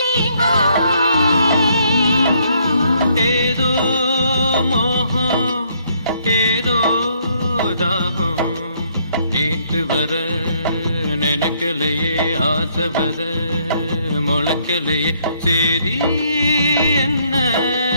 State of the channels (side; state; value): both; inverted; correlation -0.68